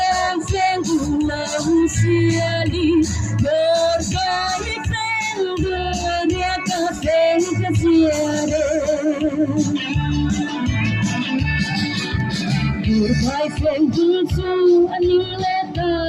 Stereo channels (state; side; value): identical; both; correlation 1.00